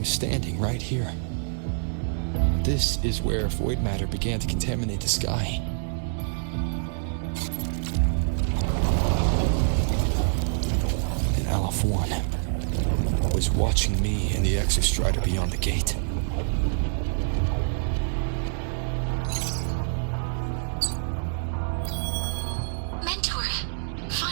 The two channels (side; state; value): left; silent; digital silence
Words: standing right here. This is where void matter began to contaminate the sky. And Aleph 1 was watching me and the Exostrider beyond the gate. Mentor,